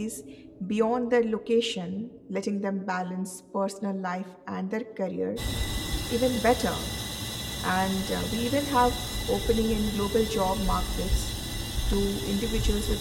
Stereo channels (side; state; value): both; identical; correlation 1.00